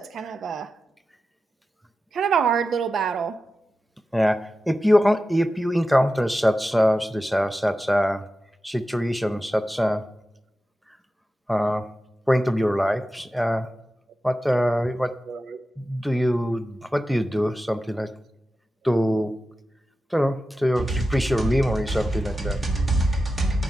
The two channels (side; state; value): both; normal; correlation 0.92